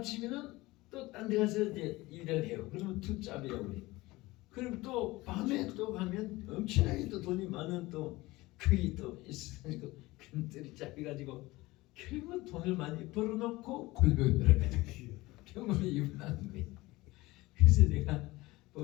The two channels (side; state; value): right; quieter; 20.2 dB